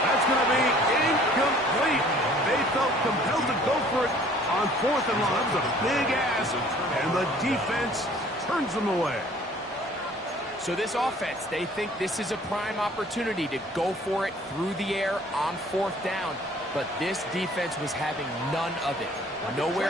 That's going to be incomplete. They felt compelled to go for it on 4th and long. That was a big ask, and the defense turns them away. So this offense, they think this is a prime opportunity to go for it through the air on 4th down. But this defense was having none of it.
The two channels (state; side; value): normal; both; correlation 0.54